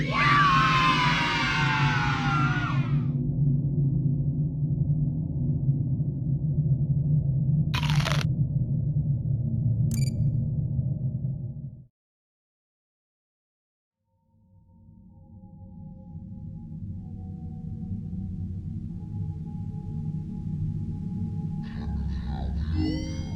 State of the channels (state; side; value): identical; both; correlation 1.00